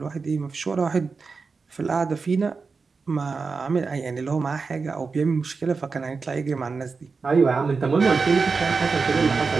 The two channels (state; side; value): quieter; left; 4.6 dB